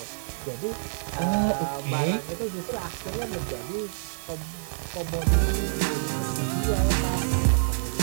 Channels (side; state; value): left; silent; digital silence